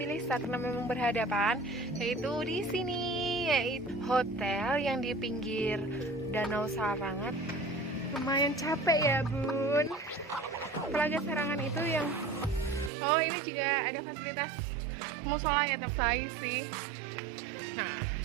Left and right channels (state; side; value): drops out; left; at 12.9 s